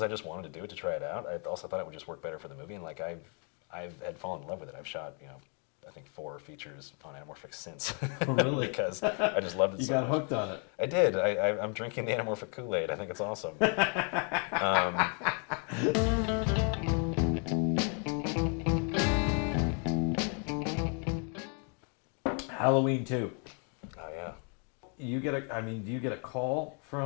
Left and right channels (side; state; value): right; quieter; 39.1 dB